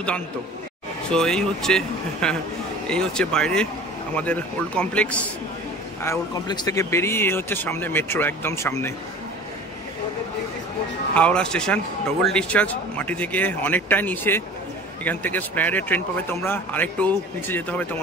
সো এই হচ্ছে বাইরে আমাদের ওল্ড কমপ্লেক্স, আর ওল্ড কমপ্লেক্স থেকে বেরিয়ে এই হচ্ছে সামনে মেট্রো, একদম সামনে হাওড়া স্টেশন। ডবল ডিসচার্জ, মাটি থেকে অনেকটাই নিচে, এখান থেকে স্প্ল্যানেডের ট্রেন পাবে তোমরা, আরেকটু নিচে যেতে হবে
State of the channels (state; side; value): normal; both; correlation 0.41